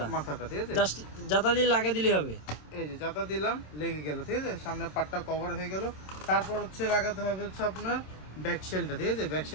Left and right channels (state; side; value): late; right; 27 ms